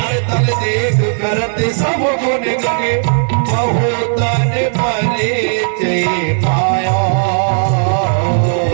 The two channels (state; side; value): silent; left; digital silence